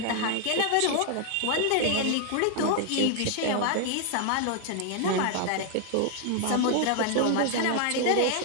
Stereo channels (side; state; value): both; different; correlation 0.00